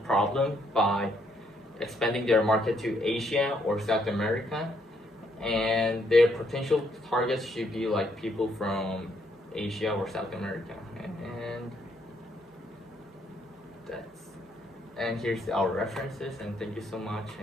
problem by expanding their market to Asia or South America. And their potential targets should be like people from Asia or South America. And here's our references, and thank you so much,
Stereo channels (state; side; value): normal; both; correlation 0.72